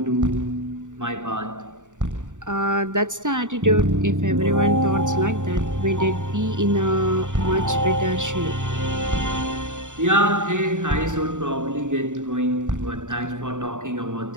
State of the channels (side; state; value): left; late; 0.86 ms